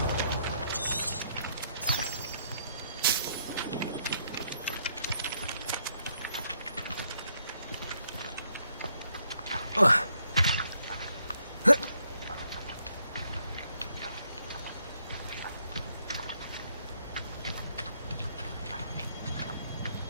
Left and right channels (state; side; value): inverted; both; correlation -0.72